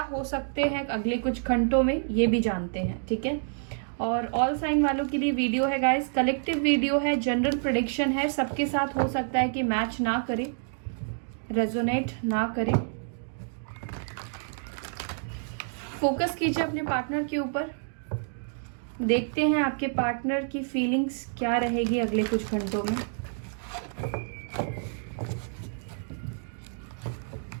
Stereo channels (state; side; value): silent; left; digital silence